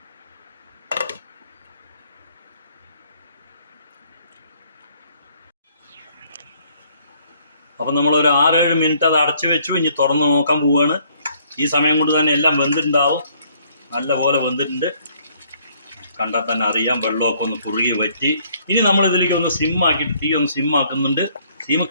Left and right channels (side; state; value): both; inverted; correlation -0.64